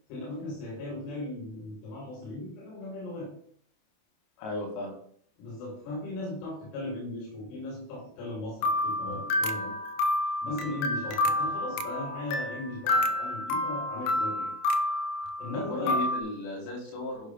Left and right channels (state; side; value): late; right; 28 ms